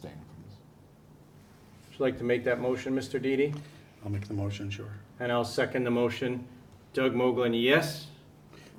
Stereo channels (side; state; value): both; identical; correlation 1.00